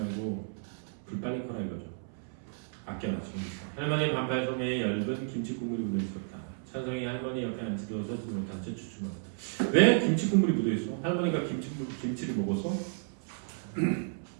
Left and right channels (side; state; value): left; silent; 56 dB below the other